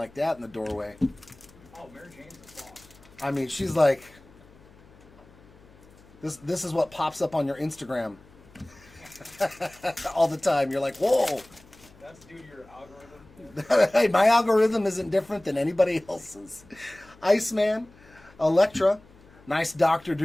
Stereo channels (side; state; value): left; noise; hum, 25 dB below the sound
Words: that in the doorway. Oh, Mary Jane's the I mean, she's like, this is what pops up on your Instagram all the time. You're like, whoa. That's due to your algorithm. Hey, my algorithm isn't different than anybody else's. Iceman, Elektra, nice Doctor